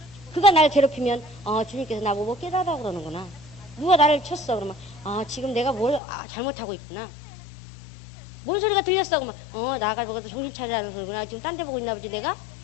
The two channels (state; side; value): drops out; right; at 6.0 s